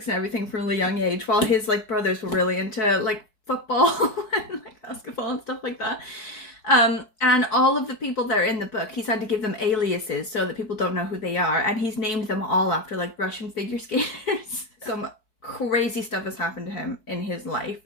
and everything from a really young age, while his like brothers were really into like football and like basketball and stuff like that. And all of the people that are in the book, he's had to give them aliases so that people don't know who they are, and he's named them all after like Russian figure skaters. Some crazy stuff has happened to him in his life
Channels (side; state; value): right; late; 4.6 ms